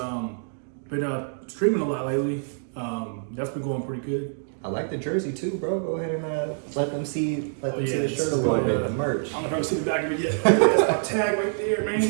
been streaming a lot lately. That's been going pretty good. I like the jersey too, bro. Go ahead and let them see the shirt a little little bit, the merch. I don't know if I've seen the back of it yet. That's my tag right there,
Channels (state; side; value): silent; left; digital silence